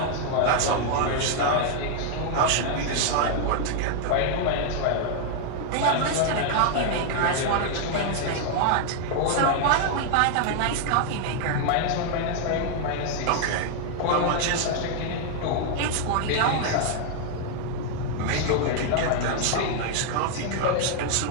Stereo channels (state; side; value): different; both; correlation 0.00